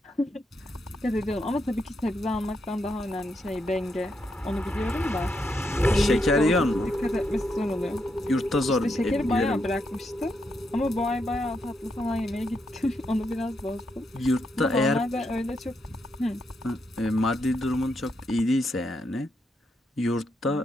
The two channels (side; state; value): both; normal; correlation 0.81